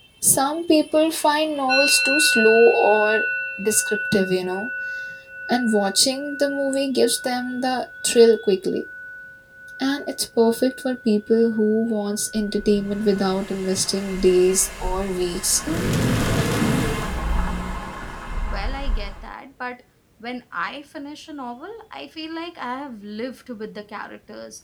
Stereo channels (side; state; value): both; identical; correlation 1.00